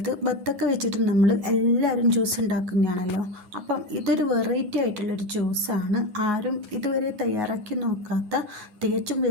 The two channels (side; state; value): left; late; 9.5 ms